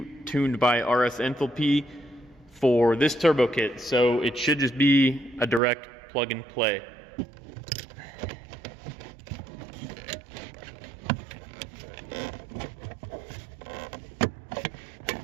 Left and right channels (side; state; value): left; drops out; at 5.6 s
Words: tuned by RS Enthalpy for this turbo kit, so it should just be a direct plug and play.